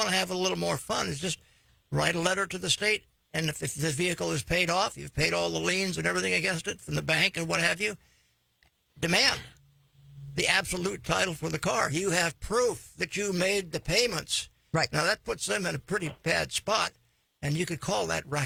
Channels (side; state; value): both; identical; correlation 1.00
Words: to have a little more fun, is just write a letter to the state, and if the vehicle is paid off, you've paid all the liens and everything against it from the bank and what have you, demand the absolute title for the car. You have proof that you made the payments. Right. Now that puts them in a pretty bad spot, and you could call that